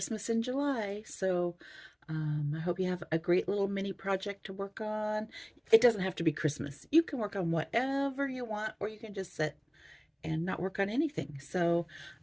in July. So I hope you have a great little mini project to work on. It doesn't have to be Christmas. You can work on whatever you want, or you can just sit and not work on anything. So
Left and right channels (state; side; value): identical; both; correlation 1.00